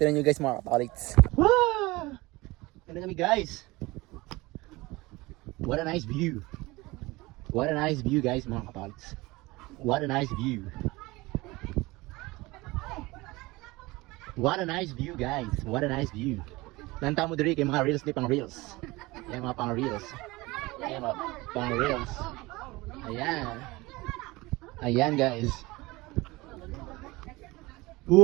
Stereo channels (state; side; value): quieter; left; 21.7 dB